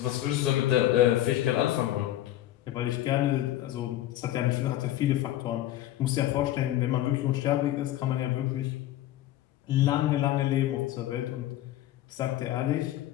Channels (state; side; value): quieter; right; 13.9 dB